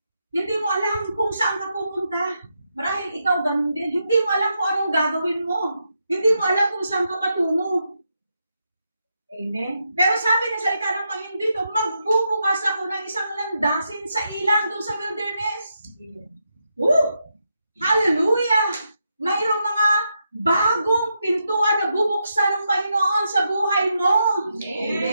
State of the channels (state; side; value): inverted; both; correlation -0.83